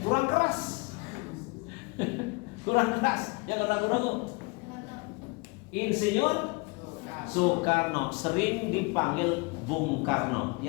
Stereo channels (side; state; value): right; quieter; 28.5 dB